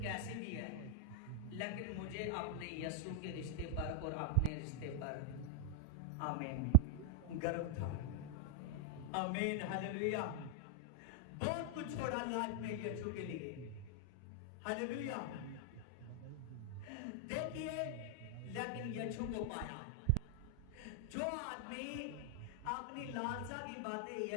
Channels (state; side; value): different; both; correlation 0.00